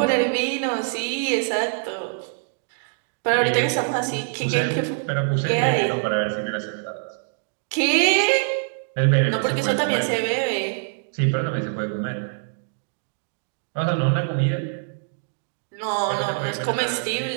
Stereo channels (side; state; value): left; quieter; 40.0 dB